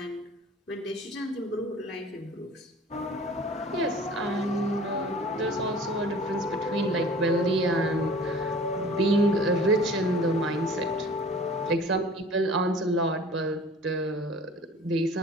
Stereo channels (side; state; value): both; normal; correlation 0.46